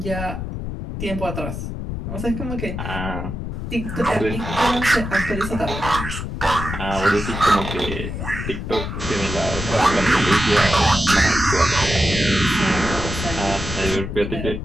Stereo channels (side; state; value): left; noise; rumble, 5 dB below the sound